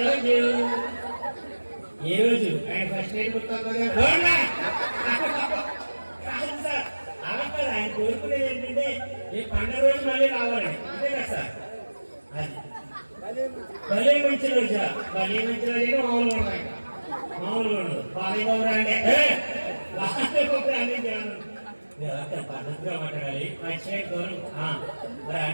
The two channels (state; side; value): inverted; both; correlation -1.00